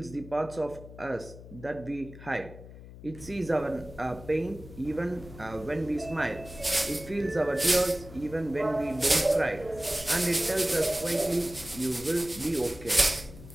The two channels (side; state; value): left; noise; hum, 16 dB below the sound